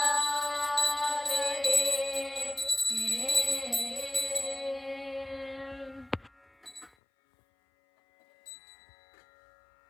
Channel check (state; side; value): drops out; right; at 6.9 s